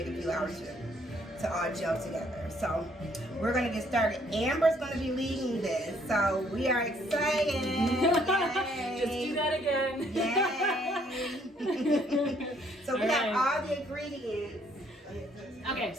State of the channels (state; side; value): normal; both; correlation 0.65